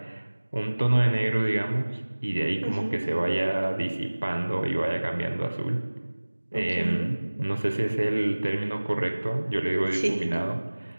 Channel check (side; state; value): both; inverted; correlation -1.00